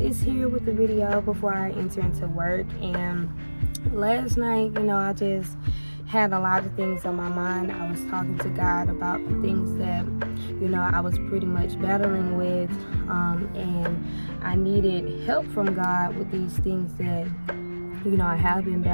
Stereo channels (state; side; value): inverted; both; correlation -1.00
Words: here with the video before I enter into work. And last night, I just had a lot of things on my mind. I was talking to God about the things that I was pretty much battling with, and I needed help from God with these things that I have been